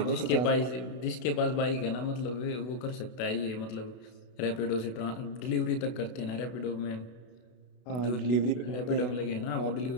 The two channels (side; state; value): right; late; 32 ms